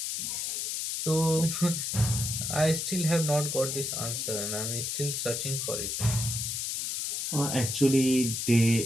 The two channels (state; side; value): noise; left; hiss, 2 dB below the sound